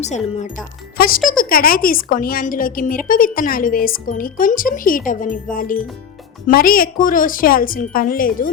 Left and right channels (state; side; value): quieter; right; 7.6 dB